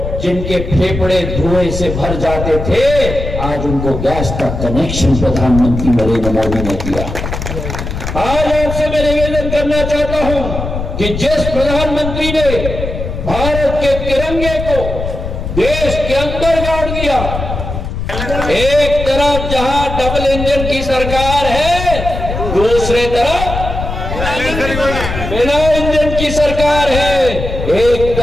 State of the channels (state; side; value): noise; left; rumble, 5 dB below the sound